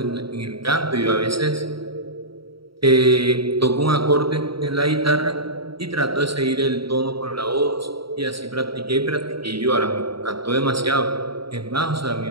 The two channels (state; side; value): late; left; 0.75 ms